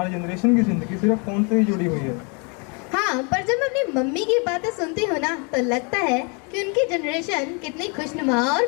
जनरेशन की जिंदगी सिर्फ फोन से ही जुड़ी हुई है। हाँ, पर जब मैं अपनी मम्मी की बातें सुनती हूँ ना तो लगता है कि उनकी जनरेशन कितनी खुशनुमा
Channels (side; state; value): right; quieter; 33.9 dB